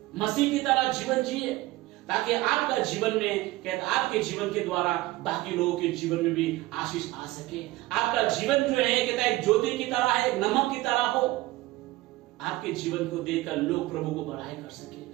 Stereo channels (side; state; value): left; quieter; 18.5 dB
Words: मसीह की तरह जीवन जिए, ताकि आपका जीवन में कहते आपके जीवन के द्वारा बाकी लोगों के जीवन में भी आशीष आ सके। आपका जीवन जो है कहता है एक ज्योति की तरह है, एक नमक की तरह हो। आपके जीवन को देखकर लोग प्रभु को बड़ाई कर